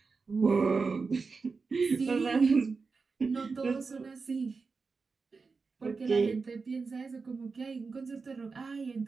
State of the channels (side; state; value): left; quieter; 4.6 dB